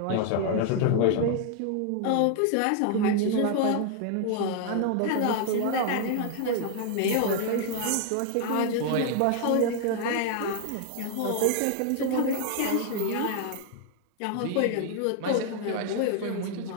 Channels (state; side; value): different; both; correlation 0.00